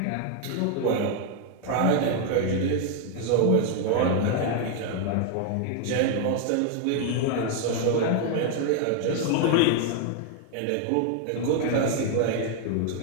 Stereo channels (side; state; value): both; different; correlation 0.00